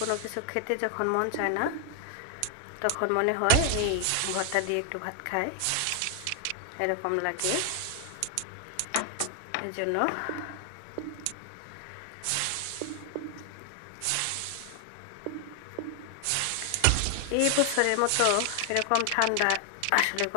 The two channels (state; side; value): different; both; correlation 0.00